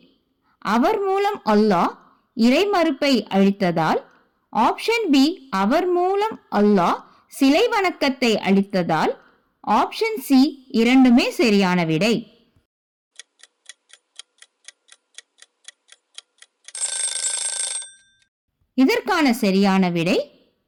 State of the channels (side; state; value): both; identical; correlation 1.00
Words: அவர் மூலம் அல்லாஹ் இறைமறுப்பை அழித்ததால், ஆப்ஷன் பி அவர் மூலம் அல்லாஹ் சிலை வணக்கத்தை அழித்ததால், ஆப்ஷன் சி இரண்டுமே சரியான விடை. இதற்கான சரியான விடை